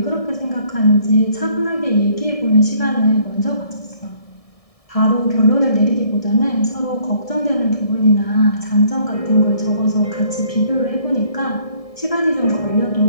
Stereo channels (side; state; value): right; late; 1.6 ms